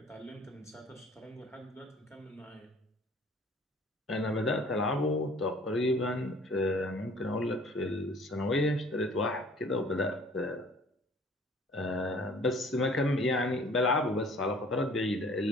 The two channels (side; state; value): both; normal; correlation 0.53